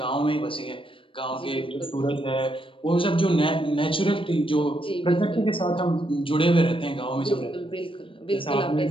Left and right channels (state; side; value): late; right; 0.25 ms